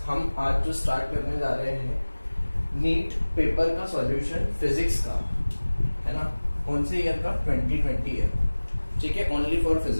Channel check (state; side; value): inverted; both; correlation -1.00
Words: हम आज जो start करने जा रहे हैं नीट पेपर का सॉल्यूशन फिजिक्स का, है ना। कौन से ईयर का? 2020 ईयर, ठीक है, ओनली फॉर